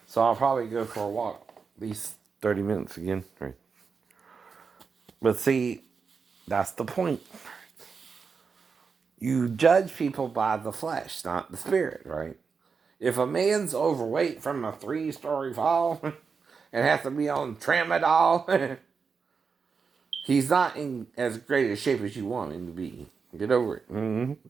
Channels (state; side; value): quieter; left; 5.4 dB